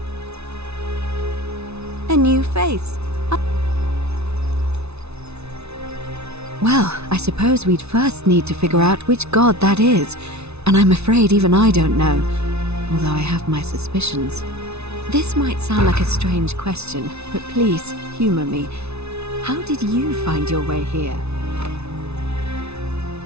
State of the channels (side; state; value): left; late; 0.80 ms